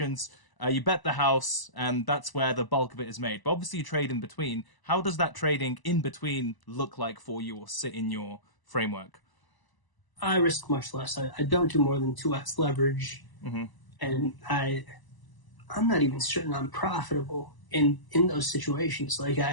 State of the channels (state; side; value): late; right; 1.0 ms